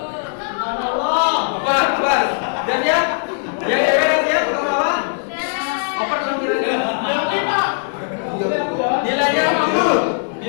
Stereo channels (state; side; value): silent; right; 63 dB below the other